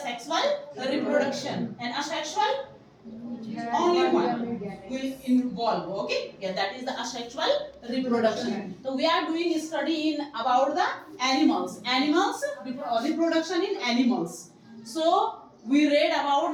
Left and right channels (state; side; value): identical; both; correlation 1.00